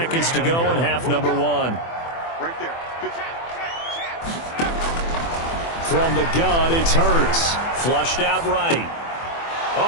to go in half number 1. Right there. From the gun, it's Hurts. Flushed out right.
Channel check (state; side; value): late; right; 24 ms